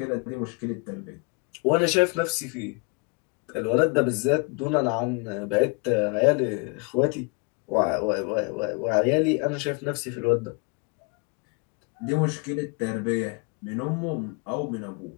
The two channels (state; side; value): quieter; right; 30.5 dB